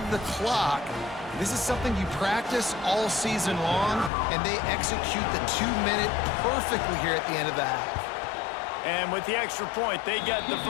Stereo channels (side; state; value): right; drops out; at 4.1 s